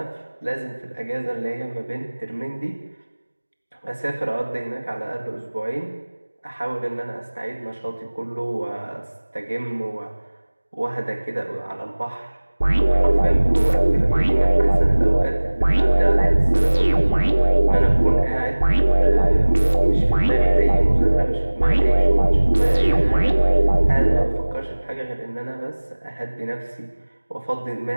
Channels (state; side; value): inverted; both; correlation -1.00